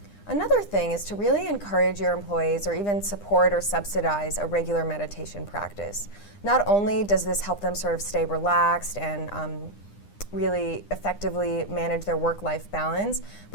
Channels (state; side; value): late; right; 9.9 ms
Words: Another thing is to really encourage your employees or even support or subsidize a regular meditation practice. Not only does this help them sort of stay relaxed and really effectively manage their work-life balance,